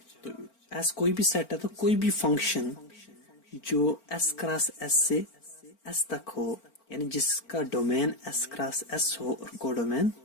तो एस कोई भी सेट है तो कोई भी फंक्शन जो एस क्रॉस एस से एस तक हो, यानी जिसका डोमेन एस क्रॉस एस हो और कोडोमेन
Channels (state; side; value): late; right; 4.4 ms